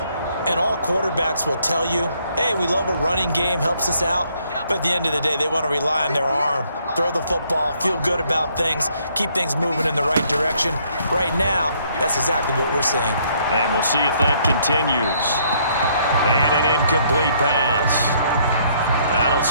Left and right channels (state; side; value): inverted; both; correlation -0.67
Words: And all quarterbacks will tell you, hey, we love a running game, helps us out. But at the end of the day, they want to rely on their arm. Throw the football, feel good about things, keep things moving in the right direction. Right now, that's exactly what we're seeing. And we'll see if that continues. And an incomplete pass. That'll